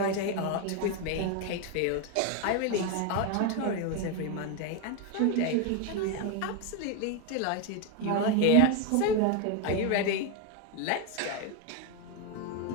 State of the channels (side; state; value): both; different; correlation 0.02